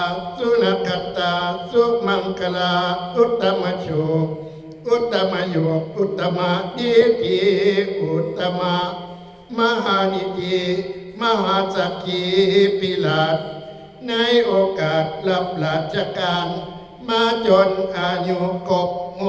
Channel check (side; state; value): both; identical; correlation 1.00